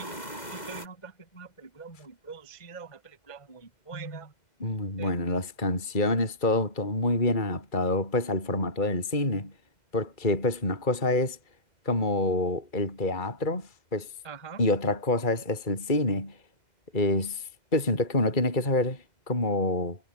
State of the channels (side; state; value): right; late; 2.3 ms